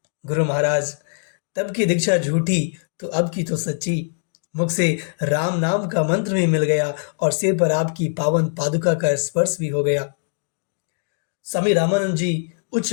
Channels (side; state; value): right; silent; digital silence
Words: गुरु महाराज, तब की दीक्षा झूठी तो अब की तो सच्ची। मुख से राम नाम का मंत्र भी मिल गया और सिर पर आपकी पावन पादुका का स्पर्श भी हो गया। स्वामी रामानंद जी उच्च